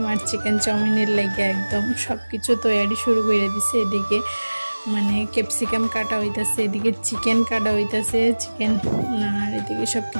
আর চিকেন চাউমিনের লাগে একদম সব কিছু তৈরি শুরু করে দিছে। এদিকে মানে ক্যাপসিকাম কাটা হইতাছে, এদিকে চিকেন কাটা হইতাছে, চিকেন। আর এদিকে সব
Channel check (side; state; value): both; inverted; correlation -1.00